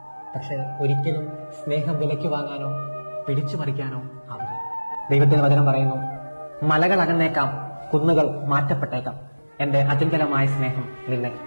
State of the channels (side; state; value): both; inverted; correlation -1.00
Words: പക്ഷെ ഒരിക്കലും സ്നേഹം വിലയ്ക്ക് വാങ്ങാനോ പിടിച്ചു പറിക്കാനോ ആവില്ല. ദൈവത്തിന്റെ വചനം പറയുന്നു, മലകൾ അകന്നേക്കാം, കുന്നുകൾ മാറ്റപ്പെട്ടേക്കാം, എന്റെ അചഞ്ചലമായ സ്നേഹം നിന്നെ